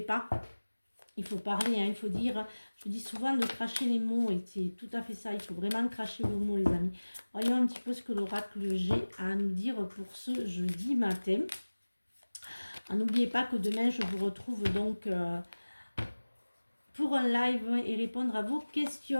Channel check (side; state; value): both; inverted; correlation -1.00